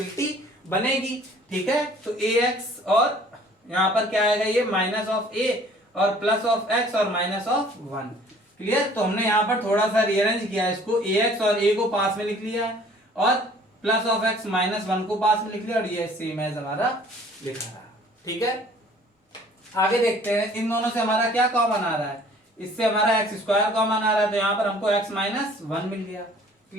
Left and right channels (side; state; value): both; normal; correlation 0.53